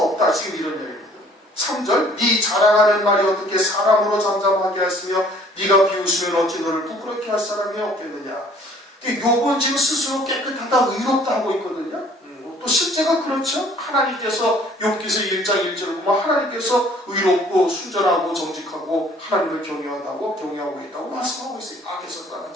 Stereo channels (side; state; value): both; normal; correlation 0.56